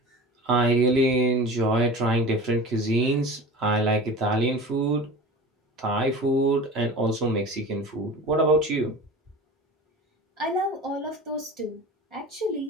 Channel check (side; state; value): both; normal; correlation 0.35